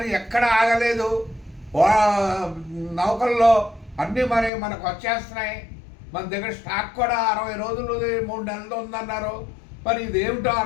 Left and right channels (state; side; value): drops out; right; at 4.5 s